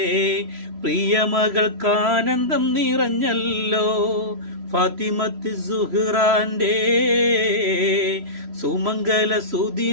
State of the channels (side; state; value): left; late; 3.0 ms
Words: പ്രിയമകൾക്കാനന്ദം നിറഞ്ഞല്ലോ. ഫാത്തിമത്ത് സുഹ്റാന്റെ സുമംഗല